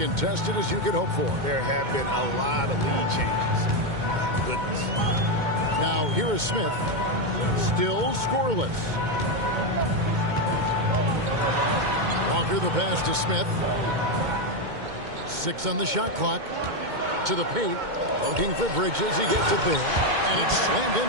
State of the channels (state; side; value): late; left; 2.2 ms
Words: as you could hope for. There have been a lot of lead changes. My goodness. Now, here is Smith. Still scoreless. Walker the pass to Smith. 6 on the shot clock. To the paint. Looking for Bridges. He gets it there. And it's slammed in